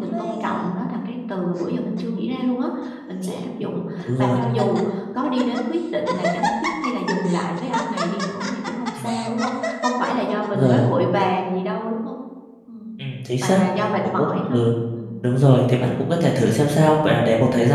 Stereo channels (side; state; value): both; identical; correlation 1.00